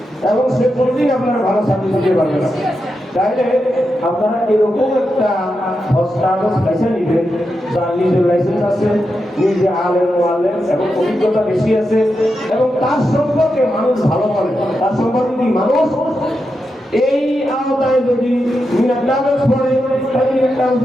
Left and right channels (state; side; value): normal; both; correlation 0.87